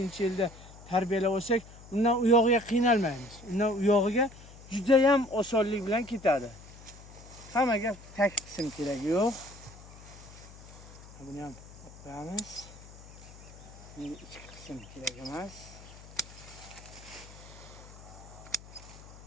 tarbiyalab olsak, undan u yog'iga qiynalmaymiz. Undan u yog'iga juda ham osonlik bilan ketadi. Hammaga tak qism keragi yo'q. Buni ham qo'yamiz. Endi ichki qism kerak emas.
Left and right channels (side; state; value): left; noise; hum, 18 dB below the sound